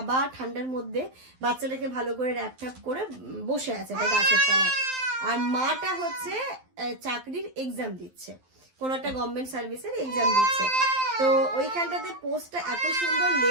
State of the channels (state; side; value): late; left; 12 ms